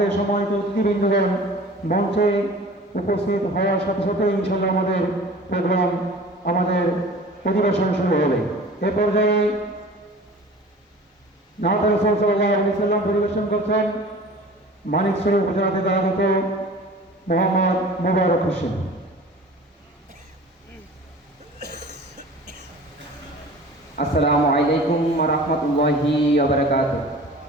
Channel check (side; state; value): both; normal; correlation 0.42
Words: সম্মানিত অতিথিবৃন্দগণ মঞ্চে উপস্থিত হওয়ার সাথে সাথে ইনশাল্লাহ আমাদের প্রোগ্রাম আমাদের অধিবেশন শুরু হবে। এ পর্যায়ে নাত রাসূল সাল্লাল্লাহু আলাইহি ওয়াসাল্লাম পরিবেশন করছেন মানিকছড়ি উপজেলাতে দায়িত্ব মোহাম্মদ মোবারক হোসেন। আসসালামু আলাইকুম ওয়া রাহমাতুল্লাহি ওয়া বারাকাতুহু।